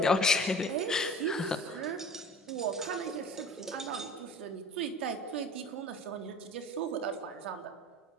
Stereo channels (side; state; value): both; normal; correlation 0.40